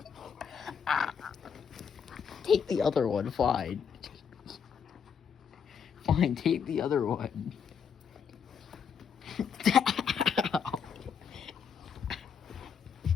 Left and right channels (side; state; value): right; quieter; 7.0 dB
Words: Take the other one, fine. Fine, take the other one.